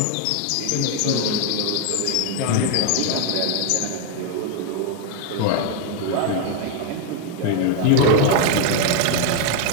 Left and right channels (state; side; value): different; both; correlation 0.01